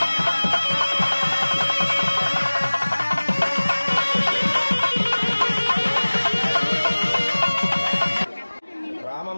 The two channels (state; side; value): inverted; both; correlation -1.00